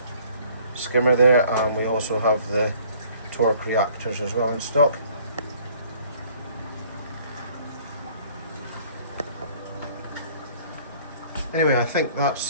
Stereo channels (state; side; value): inverted; both; correlation -0.56